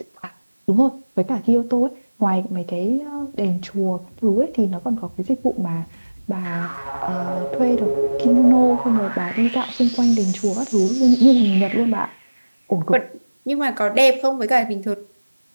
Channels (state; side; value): inverted; both; correlation -1.00